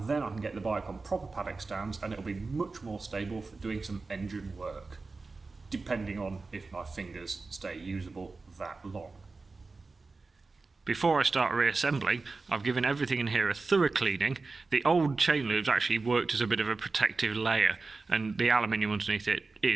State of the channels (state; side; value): quieter; left; 3.9 dB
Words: then I can get the bike on proper paddock stands and it'll be much more stable for doing some engine work, depending on if my fingers stay usable that long. Before I start reassembling, I've given everything in here a thorough cleaning. The old chain loops actually worked as a bit of a protective layer, and the aluminium underneath it